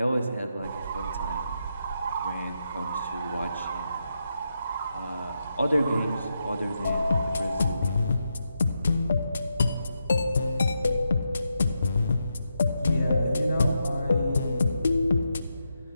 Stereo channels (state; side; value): inverted; both; correlation -0.85